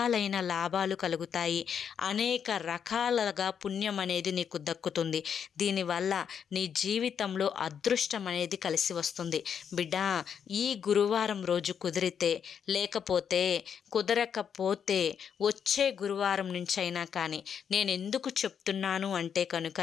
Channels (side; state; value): right; quieter; 7.7 dB